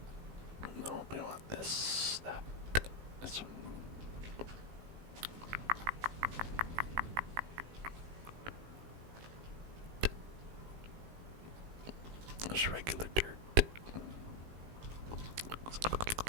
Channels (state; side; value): late; left; 18 ms